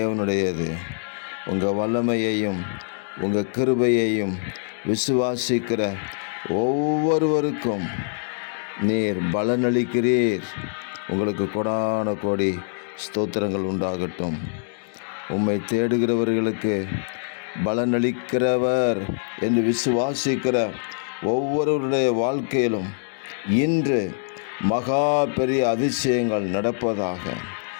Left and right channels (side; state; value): right; silent; digital silence